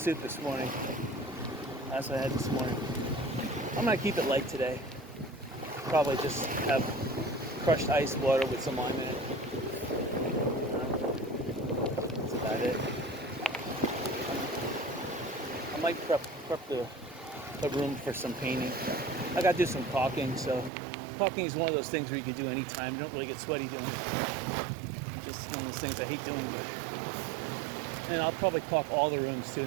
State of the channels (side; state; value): left; drops out; at 20.7 s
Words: this morning. That's what I had this morning. I'm gonna keep it light today. Probably just have crushed ice water with some lime in it. That's about it. I might prep the room for some painting. I gotta do some caulking, so caulking is one of those things where you can do anytime. You don't really get sweaty doing it. Just one of those things I hate doing. And I'll probably caulk all the rooms too,